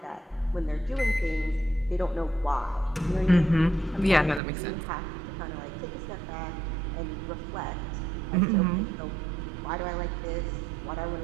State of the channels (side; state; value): left; drops out; at 4.4 s